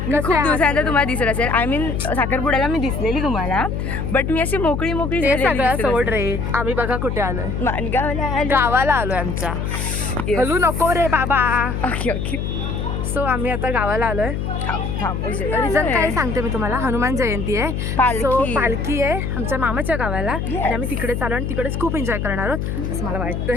दिवसानंतर तुम्हाला दिसत असेल. आय मीन साखरपुड्याला मी दिसलेली तुम्हाला, बट मी अशी मोकळी सगळ्या सोड रे. आम्ही बघा कुठे आलोय, गावाला आलोय आमच्या. हलू नको रे बाबा. Okay okay. सो आम्ही आता गावाला आलोय. रिझन काय सांगते मी तुम्हाला. हनुमान जयंती आहे, पालखी आहे आमच्या मामाच्या गावाला आणि आम्ही तिकडे चालू आणि तिकडेच खूप एन्जॉय करणार आहोत असं मला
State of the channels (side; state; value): left; noise; hum, 2 dB below the sound